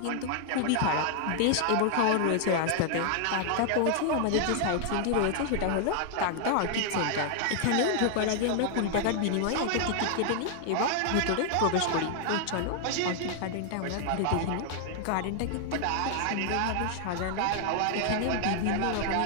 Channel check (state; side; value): different; both; correlation 0.00